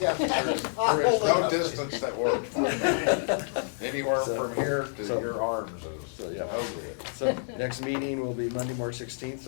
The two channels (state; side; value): silent; right; digital silence